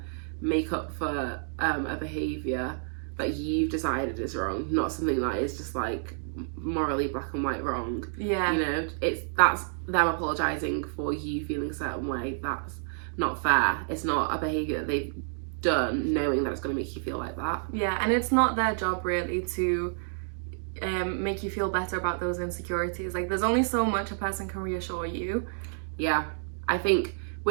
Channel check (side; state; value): left; silent; digital silence